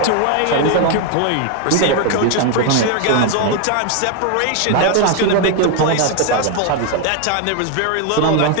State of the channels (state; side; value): different; both; correlation 0.01